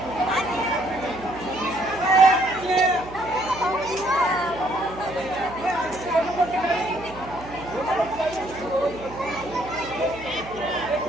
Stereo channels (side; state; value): right; noise; hum, 16 dB below the sound